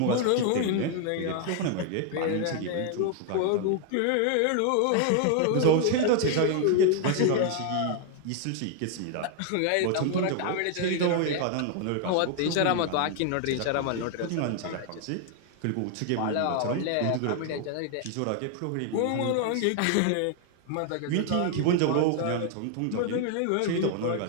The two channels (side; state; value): both; different; correlation 0.00